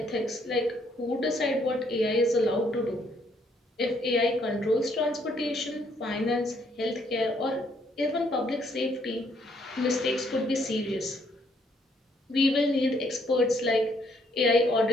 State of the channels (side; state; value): both; normal; correlation 0.69